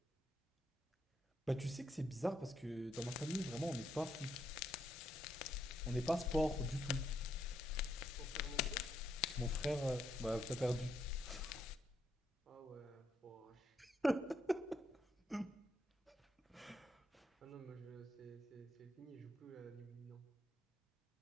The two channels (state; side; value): normal; both; correlation 0.77